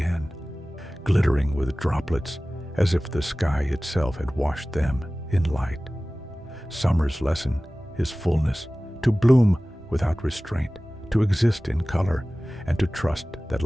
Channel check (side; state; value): both; normal; correlation 0.97